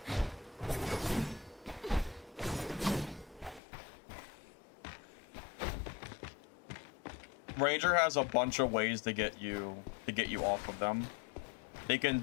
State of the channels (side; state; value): right; drops out; at 3.6 s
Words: Ranger has a bunch of ways to get you off of them. They can